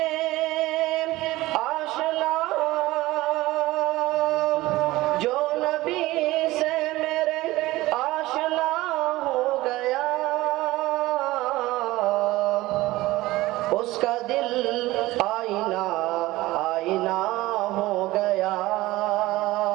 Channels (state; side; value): quieter; left; 18.3 dB